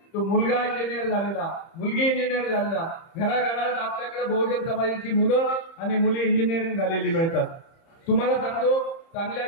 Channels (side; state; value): right; late; 30 ms